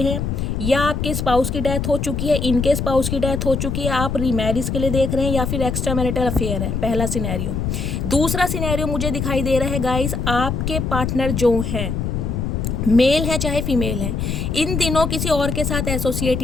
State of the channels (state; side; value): noise; left; rumble, 2 dB below the sound